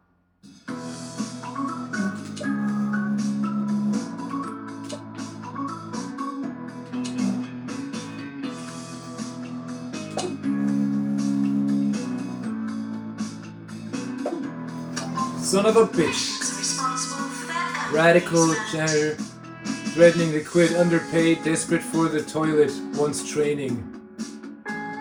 Son of a bitch. Radical janitor. Threatening to quit, underpaid, desperate for the toilet, wants training.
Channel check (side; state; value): both; identical; correlation 1.00